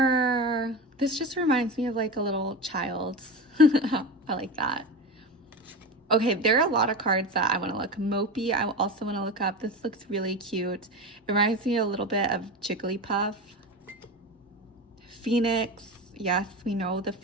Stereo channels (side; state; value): both; normal; correlation 0.24